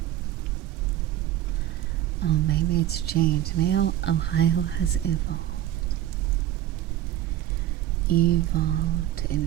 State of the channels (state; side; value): quieter; left; 12.7 dB